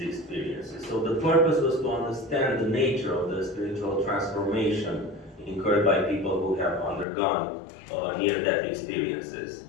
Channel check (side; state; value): right; drops out; at 7.1 s